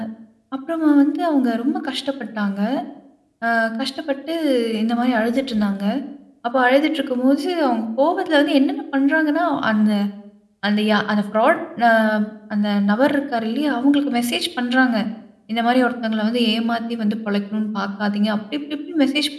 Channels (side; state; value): both; identical; correlation 1.00